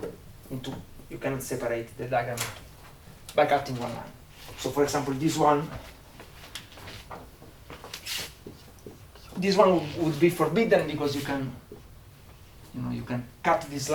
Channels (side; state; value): both; identical; correlation 1.00